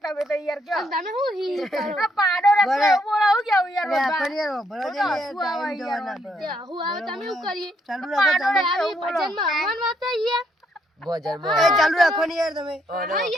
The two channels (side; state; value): both; normal; correlation 0.73